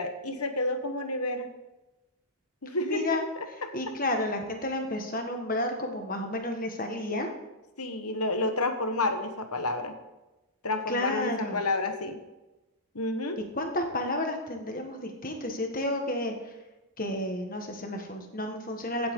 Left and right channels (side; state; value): both; normal; correlation -0.15